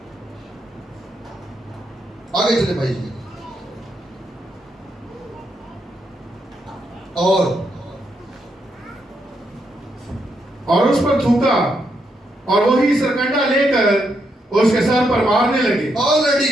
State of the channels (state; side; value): normal; both; correlation 0.79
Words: آگے چلے بھائی جی. اور اس پر تھوکا اور وہی سرکنڈا لے کر اس کے سر پر مارنے لگے.